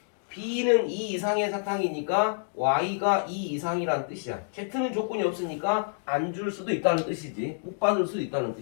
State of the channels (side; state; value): right; silent; digital silence